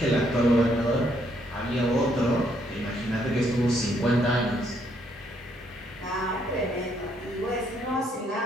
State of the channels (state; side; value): normal; both; correlation 0.71